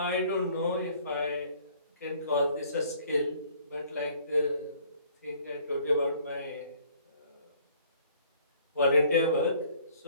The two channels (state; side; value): inverted; both; correlation -0.58